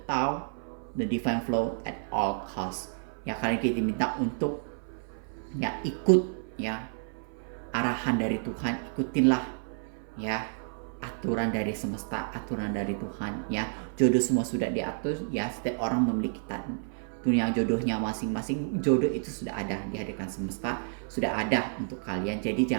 Tao, the divine flow at all costs. Ya, kalian kita minta untuk, ya, ikut, ya, arahan dari Tuhan, ikutinlah, ya, aturan dari semesta, aturan dari Tuhan, ya. Jodoh semua sudah diatur, ya. Setiap orang memiliki dunia jodohnya masing-masing. Jodoh itu sudah ada, dihadirkan semesta, sudah ada untuk kalian. Jadi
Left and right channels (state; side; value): silent; left; 56 dB below the other